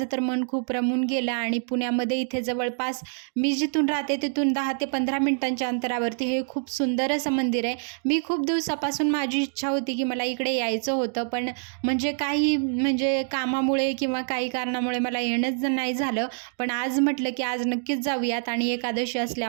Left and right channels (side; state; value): left; silent; 59 dB below the other